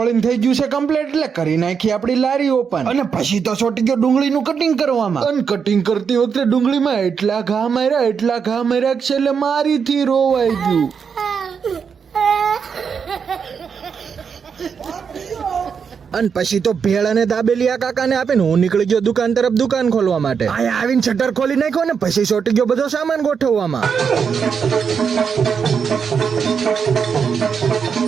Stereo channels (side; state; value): left; quieter; 6.4 dB